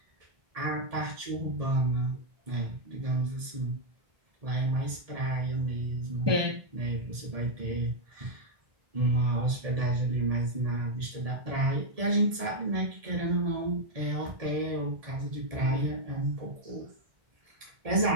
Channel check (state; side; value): late; left; 1.7 ms